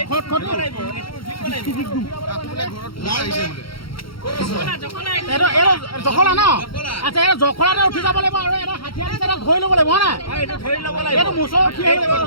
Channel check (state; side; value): late; right; 0.74 ms